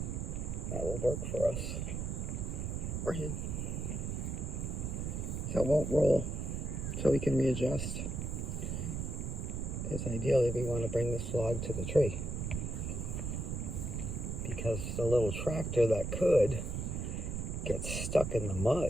that will work for us. Or him. So it won't roll, so we can readjust. Because ideally we want to bring this log to the tree. Because the little tractor that could gets stuck in the mud.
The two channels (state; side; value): noise; right; rumble, 3 dB below the sound